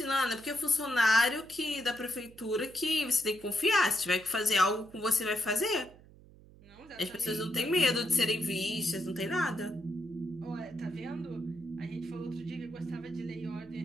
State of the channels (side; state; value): right; noise; hum, 23 dB below the sound